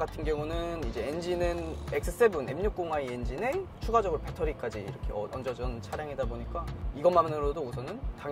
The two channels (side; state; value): both; identical; correlation 1.00